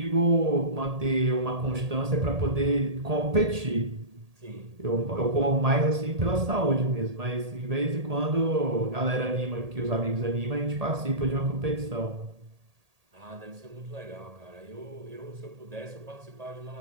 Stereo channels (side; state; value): left; late; 1.8 ms